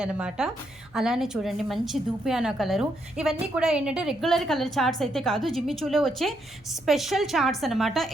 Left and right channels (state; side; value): noise; right; hum, 28 dB below the sound